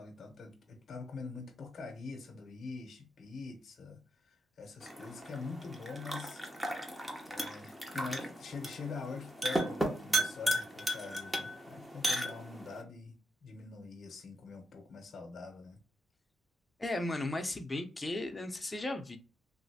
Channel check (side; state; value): both; normal; correlation 0.83